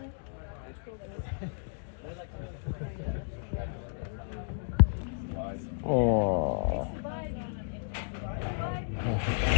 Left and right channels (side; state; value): right; silent; digital silence